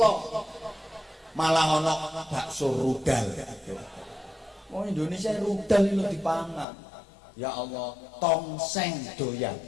Malah ono bakso rudal. Wong Indonesia rudal itu dipangan. Ya Allah, tongseng doyan.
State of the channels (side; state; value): right; drops out; at 6.7 s